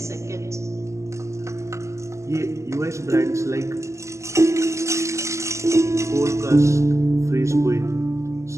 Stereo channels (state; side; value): late; left; 0.14 ms